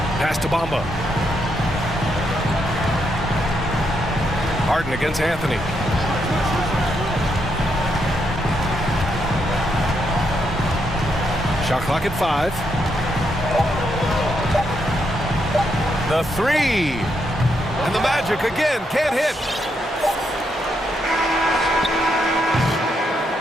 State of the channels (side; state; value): both; normal; correlation 0.79